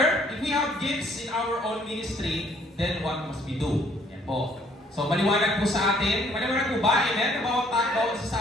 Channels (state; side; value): normal; both; correlation 0.63